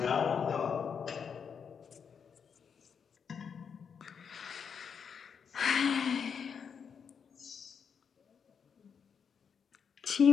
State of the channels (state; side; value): quieter; right; 6.8 dB